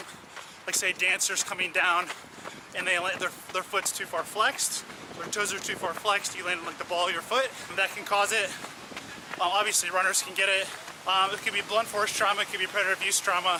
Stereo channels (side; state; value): both; identical; correlation 1.00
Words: like say dancers coming down and their foot's too far flexed, their toes are too far flexed, you land on like the ball of your foot. That can cause it. Obviously runners can get it. It could be blunt force trauma, it could be predator abuse